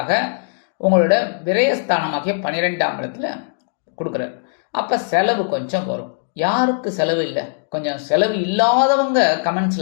உங்களோட விரயஸ்தானமாகிய 12ஆம் இடத்துல கொடுக்குறாரு. அப்போ செலவு கொஞ்சம் வரும். யாருக்கு செலவு இல்லை? கொஞ்சம் செலவு இல்லாதவங்க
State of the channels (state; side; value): silent; right; digital silence